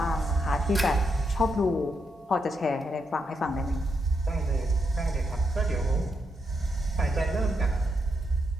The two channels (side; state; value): both; normal; correlation 0.81